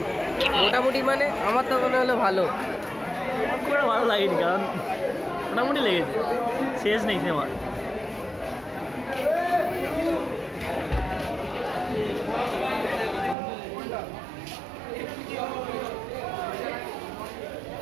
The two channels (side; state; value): left; drops out; at 13.4 s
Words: মোটামুটি মানে আমার তো মনে হলো ভালো। খুব একটা ভালো লাগেনি, কারণ মোটামুটি লেগেছে, শেষ নেই সিনেমা।